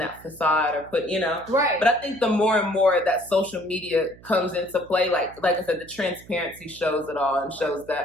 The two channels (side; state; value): right; noise; hum, 22 dB below the sound